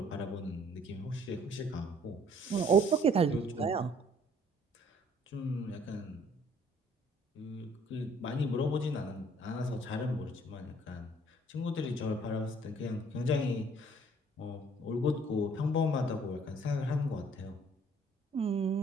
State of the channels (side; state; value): both; normal; correlation 0.59